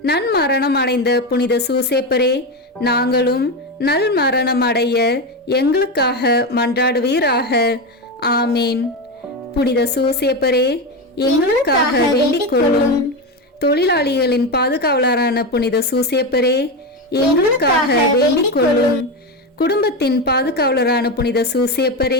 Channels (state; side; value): normal; both; correlation 0.15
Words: நன்மரணம் அடைந்த புனித சூசேப்பரே, நாங்களும் நல் மரணம் அடைய எங்களுக்காக மன்றாடுவீராக. ஆமேன். புனித சூசேப்பரே, எங்களுக்காக வேண்டிக் கொள்ளும். தொழிலாளிகளின் பாதுகாவலரான புனித சூசேப்பரே, எங்களுக்காக வேண்டிக் கொள்ளும். குடும்பத்தின் பாதுகாவலரான புனித